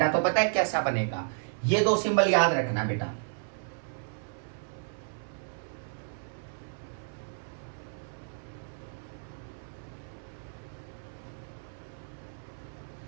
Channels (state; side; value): silent; left; 56 dB below the other